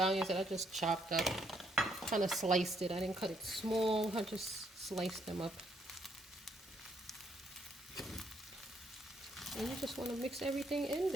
that I just chopped up. Kind of sliced it. I didn't cut it small. I just sliced them up. And you just want to mix everything in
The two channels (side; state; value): both; normal; correlation 0.72